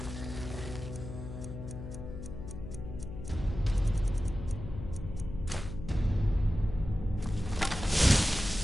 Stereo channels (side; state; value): left; noise; hum, 9 dB below the sound